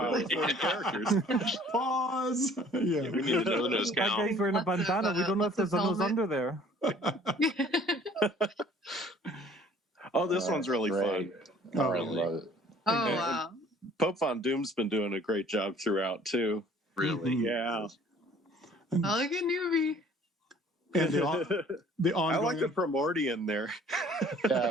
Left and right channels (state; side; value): normal; both; correlation 0.54